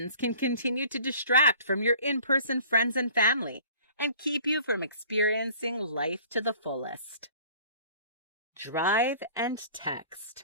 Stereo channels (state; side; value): inverted; both; correlation -0.49